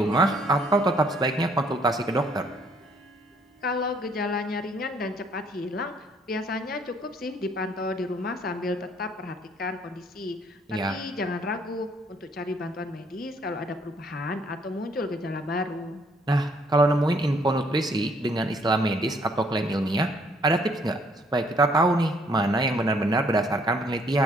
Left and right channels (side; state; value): both; normal; correlation 0.65